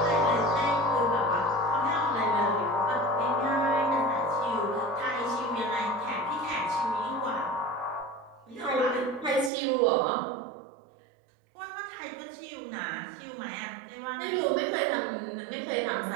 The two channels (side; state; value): left; drops out; at 9.5 s